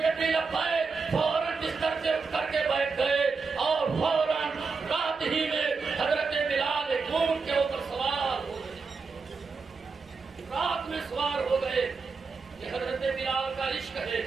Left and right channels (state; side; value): quieter; left; 4.7 dB